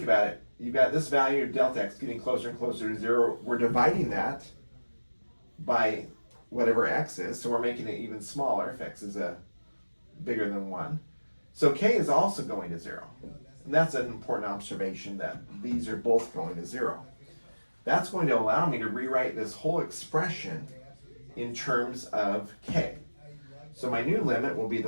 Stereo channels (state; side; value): inverted; both; correlation -1.00